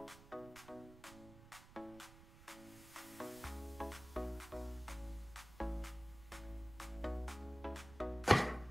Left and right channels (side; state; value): right; noise; rumble, 18 dB below the sound